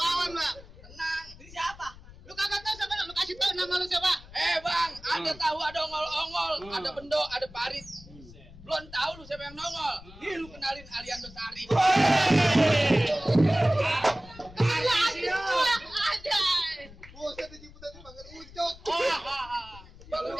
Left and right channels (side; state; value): left; noise; rumble, 19 dB below the sound